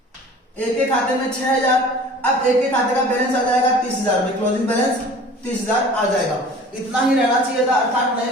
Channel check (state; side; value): normal; both; correlation 0.45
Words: एक के खाते में 6,000, अब एक के खाते का बैलेंस आ जाएगा 30,000 में, क्लोजिंग बैलेंस 30,000 आ जाएगा। इतना ही रहना चाहिए था, अर्थात नए